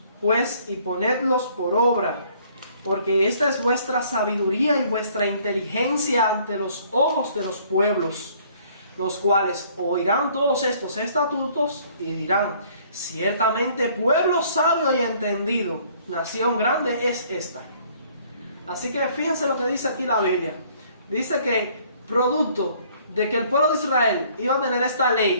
pues y ponedlos por obra, porque esta es vuestra sabiduría y vuestra inteligencia ante los ojos de los pueblos, los cuales oirán todos estos estatutos y dirán: ciertamente pueblo sabio y entendido, nación grande es esta. Así que fíjense lo que dice aquí la Biblia. Dice que producto de que el pueblo de Israel iba a tener esta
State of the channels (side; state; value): both; inverted; correlation -0.60